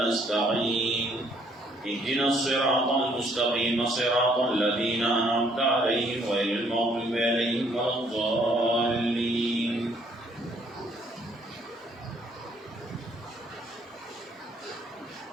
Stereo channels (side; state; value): both; normal; correlation 0.65